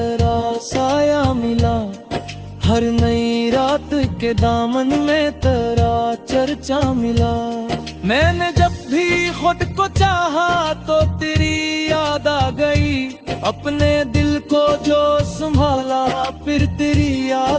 साया मिला, हर नई रात के दामन में तेरा चर्चा मिला। मैंने जब भी खुद को चाहा तो तेरी याद आ गई, अपने दिल को जो संभाला फिर तेरी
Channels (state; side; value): identical; both; correlation 1.00